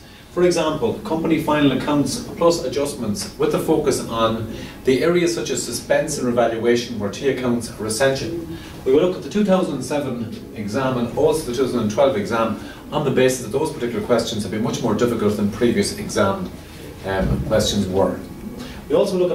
For example, company final accounts plus adjustments, with the focus on the areas such as suspense and revaluation where T accounts are essential. We will look at the 2007 exam and also the 2012 exam on the basis that those particular questions have been much more difficult than previous exam questions were. We also look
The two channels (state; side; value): identical; both; correlation 1.00